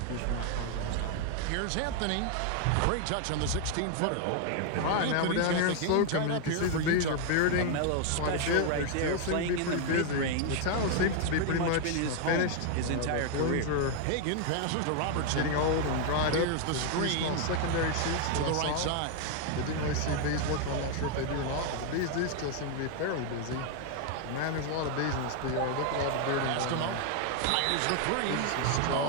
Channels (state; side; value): different; both; correlation 0.00